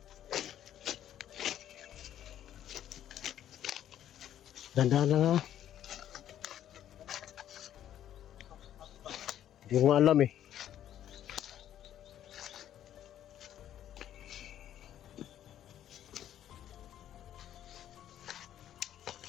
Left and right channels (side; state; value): right; quieter; 11.1 dB